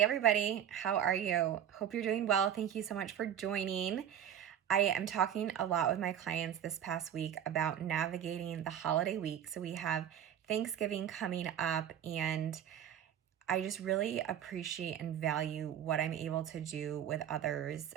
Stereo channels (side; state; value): left; quieter; 9.8 dB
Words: everybody, how are you? Hope you're doing well. Thank you so much for joining. I am talking a lot with my clients this past week about navigating the holiday week. So we have Thanksgiving coming up, and I just really appreciate and value what I'm able to do with others